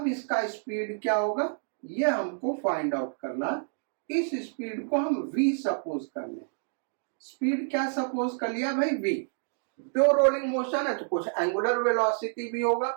इसका स्पीड क्या होगा ये हमको फाइंड आउट करना। इस स्पीड को हम v सपोज कर लें। स्पीड क्या सपोज कर लिया भाई, v। प्योर रोलिंग मोशन है तो कुछ एंगुलर वेलोसिटी भी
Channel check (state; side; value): silent; left; digital silence